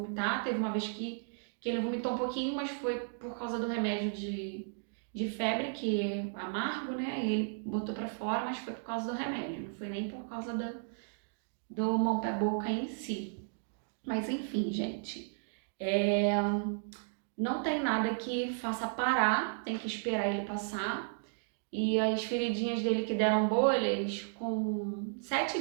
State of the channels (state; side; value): silent; left; digital silence